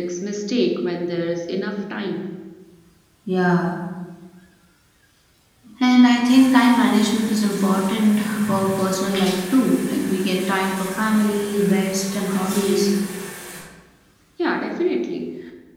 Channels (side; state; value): both; identical; correlation 1.00